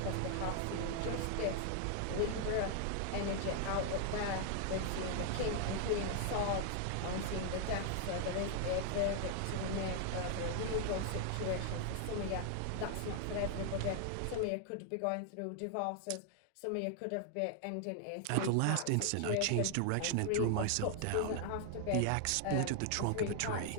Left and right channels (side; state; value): both; different; correlation 0.00